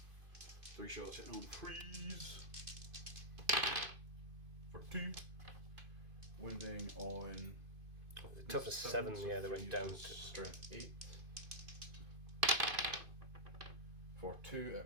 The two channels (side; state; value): left; late; 2.5 ms